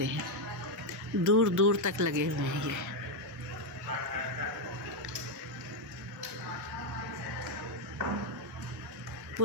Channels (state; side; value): normal; both; correlation 0.03